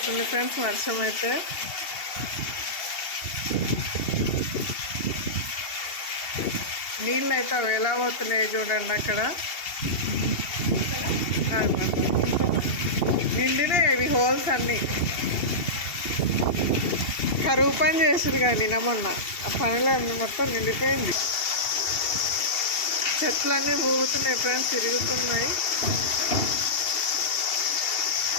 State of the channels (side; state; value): right; late; 2.7 ms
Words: ఫ్రెండ్స్ వర్షం అయితే. నీళ్ళు అయితే అవి ఎలా పోతున్నాయి చూడండి. అక్కడ నిండినాయి ఇవి హోల్స్ అన్నీ. కరువు పని చేసారు కానీ మొన్న ఆ పనిలో మొత్తం నిండిపోయింది. చెట్లన్నీ ఊగుతున్నాయి ఫ్రెండ్స్, తిరుగుతున్నాయి.